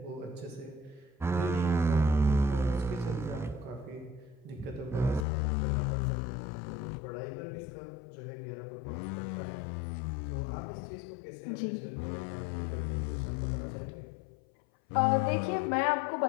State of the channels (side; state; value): right; drops out; at 5.2 s